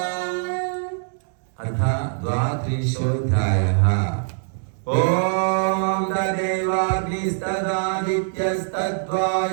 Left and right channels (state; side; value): silent; left; digital silence